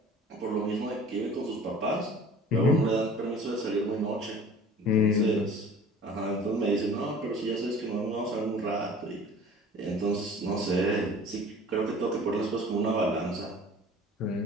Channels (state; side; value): normal; both; correlation 0.45